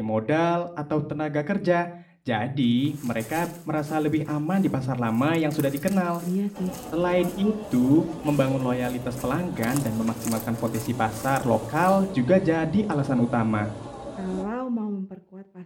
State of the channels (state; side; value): identical; both; correlation 1.00